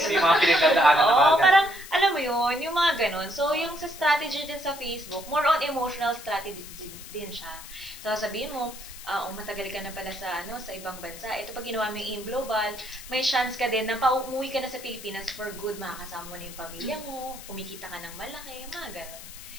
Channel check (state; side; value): noise; left; hiss, 14 dB below the sound